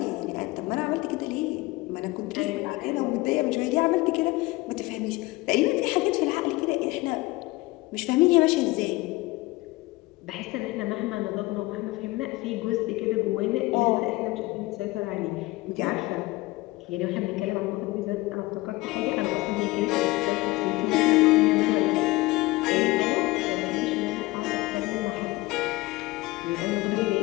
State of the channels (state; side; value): quieter; right; 20.7 dB